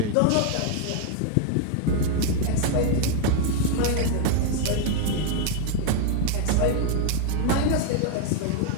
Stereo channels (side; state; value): both; different; correlation 0.00